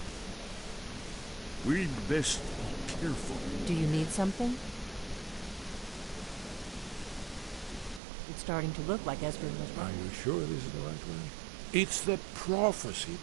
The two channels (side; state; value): left; drops out; at 8.0 s